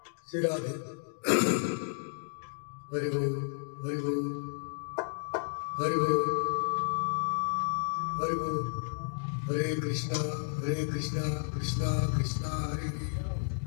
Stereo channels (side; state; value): right; silent; digital silence